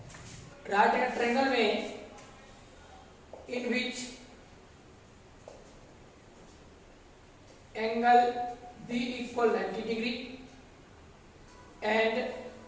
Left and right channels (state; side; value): identical; both; correlation 1.00